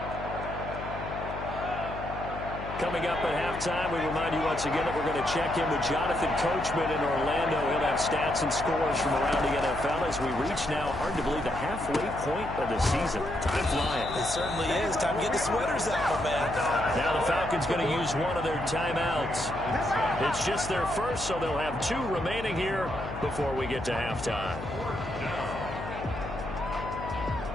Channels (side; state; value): left; noise; hum, 9 dB below the sound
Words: Coming up at halftime, we remind you once again that we're going to check in with Jonathan Coachman in Orlando. He'll have stats and scores from around the NFL as we reach now, hard to believe, the halfway point of the season. Time flying. It certainly is. Time to get the sweaters out, man. Now the Falcons going to use one of their timeouts. It's just their first, so they'll have 2 remaining here before we get to halftime.